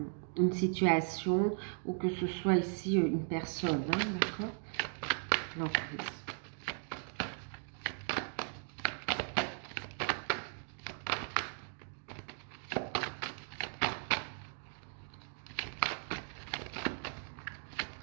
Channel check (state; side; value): silent; left; 53 dB below the other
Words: situation ou que ce soit ici une personne, hein, d'accord? L'emprise.